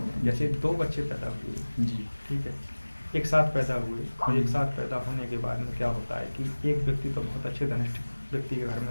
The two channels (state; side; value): inverted; both; correlation -1.00